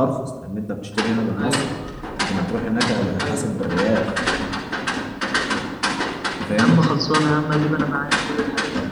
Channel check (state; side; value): identical; both; correlation 1.00